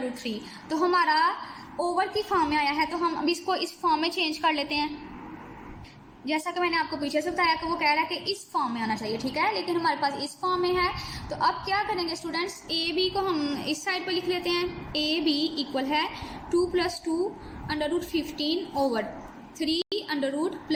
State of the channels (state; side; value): identical; both; correlation 1.00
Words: तो हमारा ओवर की फॉर्म में आया है, तो हम अब इसको इस फॉर्म में चेंज कर लेते हैं। जैसा कि मैंने आपको पीछे से बताया कि वो कह रहा है कि इस फॉर्म में आना चाहिए, ठीक है, लेकिन हमारे पास इस फॉर्म में है। तो अब क्या करेंगे स्टूडेंट्स, AB को हम इस साइड पे लिख लेते हैं। AB इक्वल है 2 + 2 √15/3 √+